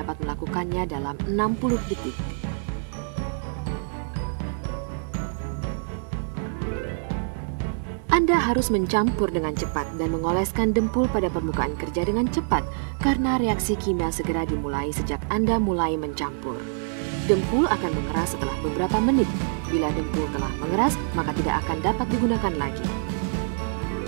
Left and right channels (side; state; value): left; silent; 61 dB below the other